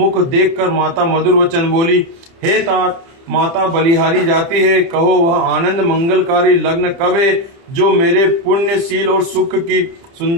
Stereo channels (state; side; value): late; left; 30 ms